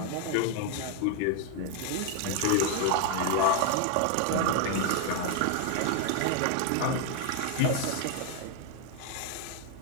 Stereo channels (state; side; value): different; both; correlation 0.01